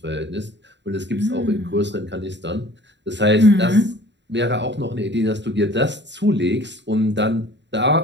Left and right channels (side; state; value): left; late; 0.52 ms